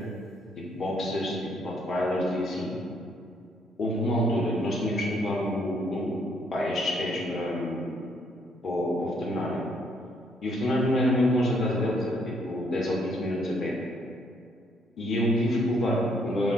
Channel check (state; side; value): normal; both; correlation 0.70